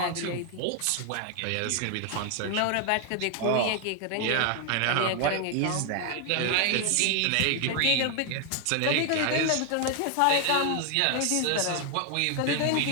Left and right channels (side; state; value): both; different; correlation 0.00